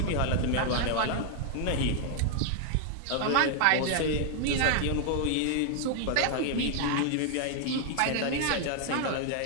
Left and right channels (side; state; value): both; different; correlation 0.00